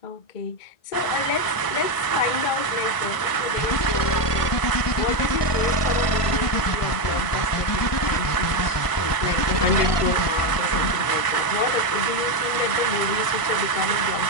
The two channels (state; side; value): late; right; 1.6 ms